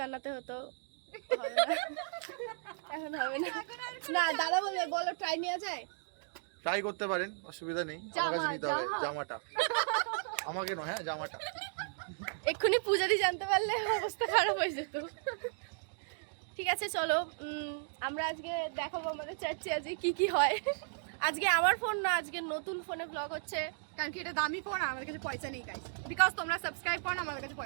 হতো। হবে না, এখন হবে না। না, দাদা বলবে বলো ট্রাই নেওয়া যায়। ট্রাই করতে পারেন, অসুবিধা নেই। আমার কাছে নিতে হবে জামাটা, আমাকে নয়, হ্যাঁ জামাটা। এক্ষুনি পূজাদি জানতে পারলে অবস্থা খারাপ হয়ে যেত। ঠিক আছে, চলো আমরা আজকে দেখাবো আমাদের চার্চে আজকে কি কি হয়। আজকে আমার ফোন না, আজকে নতুন ফোনে ব্লগ হচ্ছে। কারণ কি এটা দামি ফোন, আমাদের কাছে পয়সা নেই গাইস। বিকজ তোমরা সাবস্ক্রাইব করো না, আমাদের কাছে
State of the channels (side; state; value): left; silent; digital silence